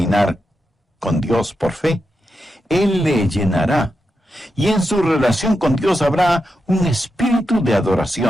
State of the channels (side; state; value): both; normal; correlation 0.87